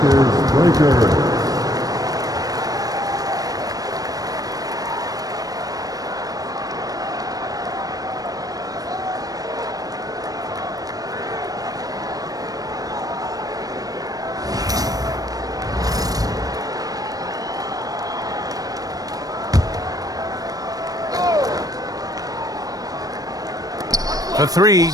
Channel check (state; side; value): late; left; 0.18 ms